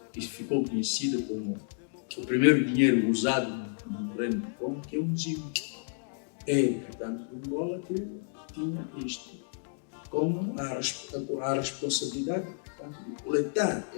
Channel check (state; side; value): silent; right; digital silence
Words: que ficou conhecida como o primeiro dinheiro usado no Reino do Congo, que é um zimo. Portanto, o Angola que tinha isto como a responsabilidade, portanto, de coletar